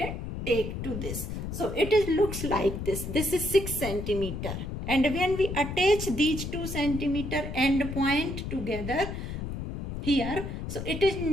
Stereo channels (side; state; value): left; noise; rumble, 6 dB below the sound